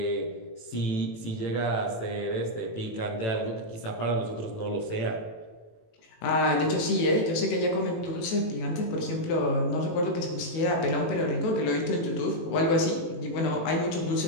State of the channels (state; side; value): late; right; 18 ms